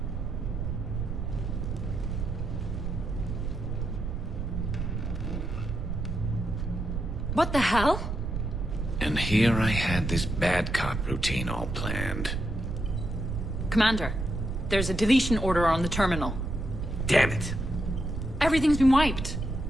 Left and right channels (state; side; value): noise; right; rumble, 3 dB below the sound